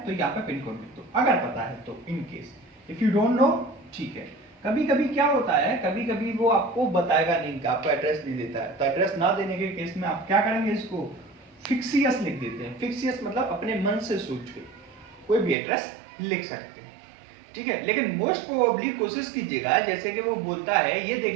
तो यहाँ पे पिन कोड लिख दो, अगर पता है तो, in case if you don't know, ठीक है। कभी कभी क्या होता है, कभी कभी वो आपको बताएगा नहीं, आपको एड्रेस नहीं देता है, तो एड्रेस ना देने के केस में आप क्या करेंगे, इसको फिक्सियस लिख देते हैं। फिक्सियस मतलब अपने मन से सोच के कोई भी एड्रेस लिख सकते हैं, ठीक है। लेकिन मोस्ट प्रोबेबली कोशिश कीजिएगा, जैसे कि वो बोलता है, ये देख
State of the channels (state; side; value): drops out; left; at 15.6 s